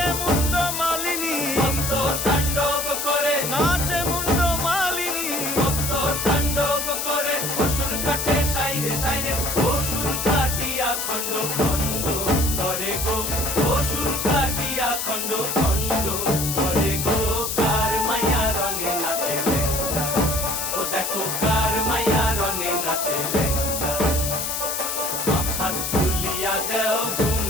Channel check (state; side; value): noise; left; hiss, 2 dB below the sound